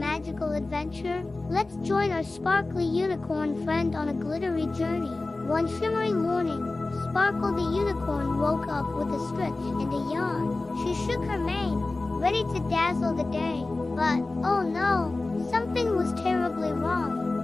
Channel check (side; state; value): right; quieter; 3.2 dB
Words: adventure? Let's join our sparkly unicorn friend on a glittery journey. One shimmering morning, Sparkle the unicorn woke up with a stretch and a yawn. She shook her mane, ready to dazzle the day. But, oh no, something was terribly